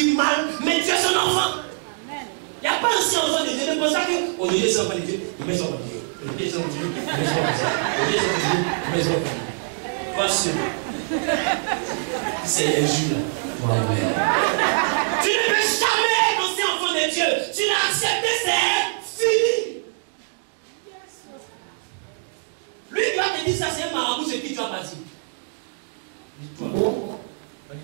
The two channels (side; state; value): left; silent; digital silence